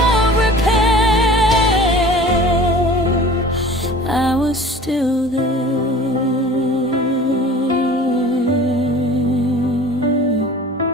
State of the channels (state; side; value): normal; both; correlation 0.43